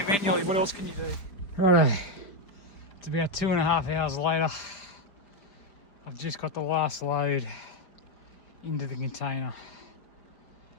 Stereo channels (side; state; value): right; late; 5.0 ms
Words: manually. What else can you do? Righto. It's about 2.5 hours later. I've just got the last load into the container.